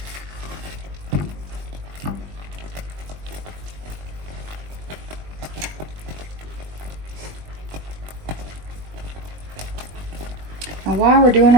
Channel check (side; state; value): left; late; 20 ms